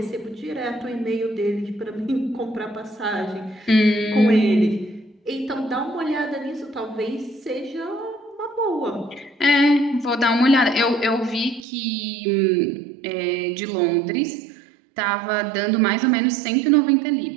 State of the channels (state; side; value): drops out; left; at 11.7 s